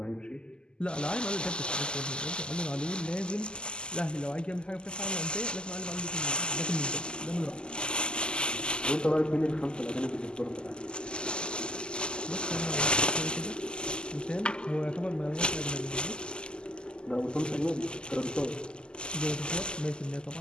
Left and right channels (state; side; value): late; right; 0.048 ms